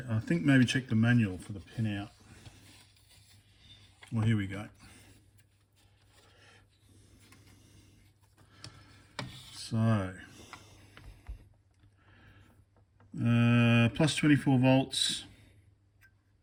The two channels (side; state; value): both; identical; correlation 1.00